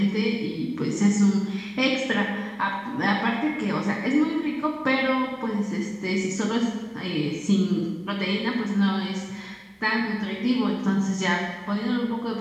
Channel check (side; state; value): both; identical; correlation 1.00